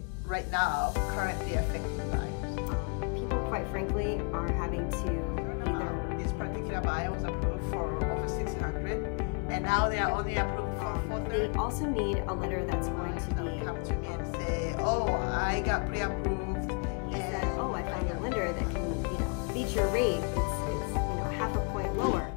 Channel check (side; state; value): right; quieter; 37.3 dB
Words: right now currently affecting buyers? People, quite frankly, are having to either This particular buyer was approved for over 600, and now they are only approved for 430. they also need a lender that's going to be Come to me and say, "Oh, I got pre-approved." he said, oh, I found a lender that can, beat your rate. It's half a point lower.